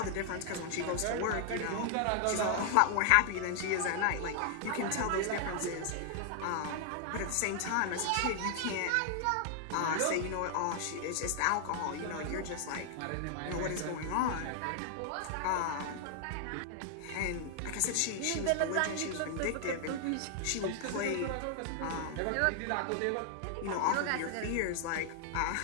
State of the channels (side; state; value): both; different; correlation 0.00